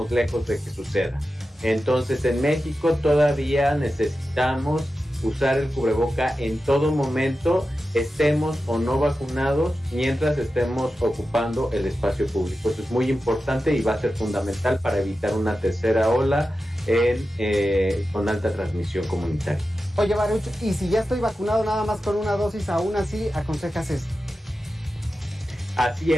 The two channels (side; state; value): both; normal; correlation 0.92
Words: lejos de que suceda. Entonces en México todavía necesitamos usar el cubreboca en todo momento, estemos o no vacunados, mientras estemos ocupando el espacio público. Eso es muy importante y va a ser fundamental para evitar una tercera ola con alta transmisión comunitaria. Oye, Baruch, y si ya estoy vacunado nada más con una dosis, aún así aconsejas esto? Así